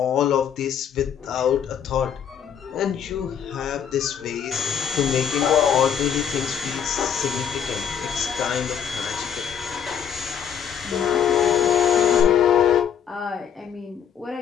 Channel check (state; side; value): quieter; right; 8.2 dB